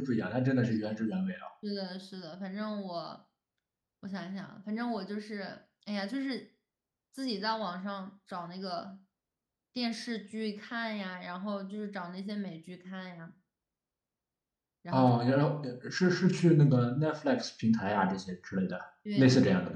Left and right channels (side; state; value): both; identical; correlation 1.00